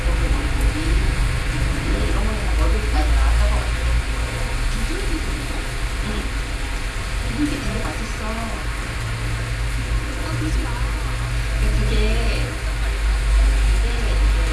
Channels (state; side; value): identical; both; correlation 1.00